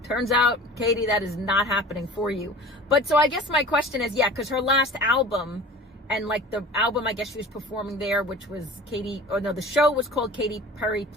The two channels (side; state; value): both; normal; correlation 0.40